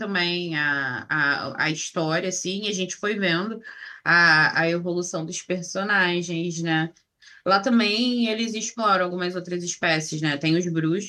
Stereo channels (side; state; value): both; identical; correlation 1.00